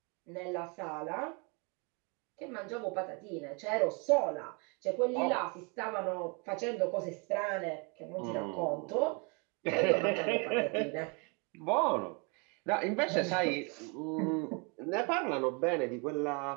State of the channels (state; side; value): quieter; left; 32.8 dB